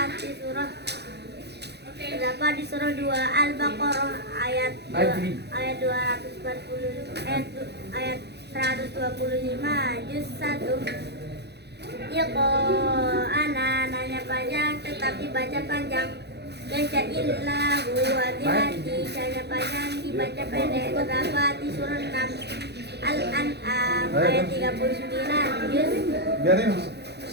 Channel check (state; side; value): late; left; 0.48 ms